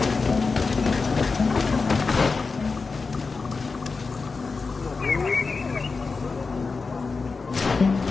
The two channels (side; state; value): right; quieter; 4.4 dB